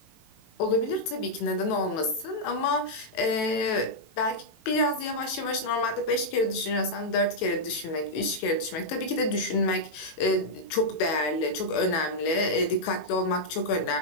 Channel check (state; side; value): late; right; 18 ms